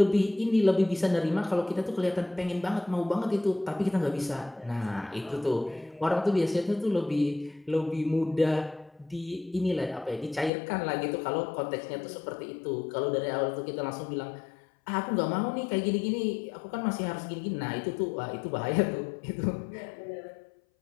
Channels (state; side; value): drops out; right; at 10.5 s